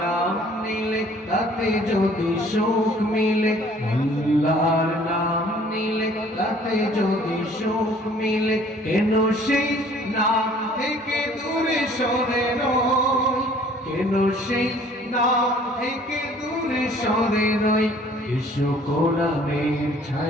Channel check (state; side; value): normal; both; correlation 0.55